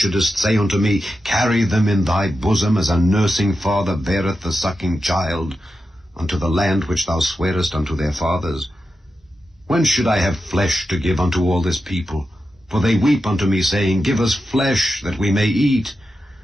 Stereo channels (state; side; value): normal; both; correlation 0.89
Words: say unto me, Carry them in thy bosom, as a nursing father beareth the sucking child, unto the land which thou swarest unto their fathers? When should I have flesh to give unto all this people? For they weep unto me, saying, Give us flesh, that we may eat.